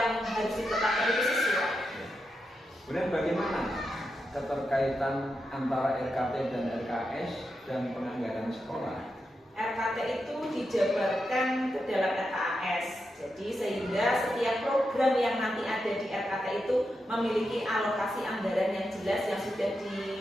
harus ditetapkan itu sesuai. Kemudian bagaimana keterkaitan antara RKT dan RKS dan penganggaran sekolah? RKT itu dijabarkan ke dalam RKAS, jadi sehingga setiap program yang nanti ada di RKT itu memiliki alokasi anggaran yang jelas yang sudah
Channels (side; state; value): both; normal; correlation 0.87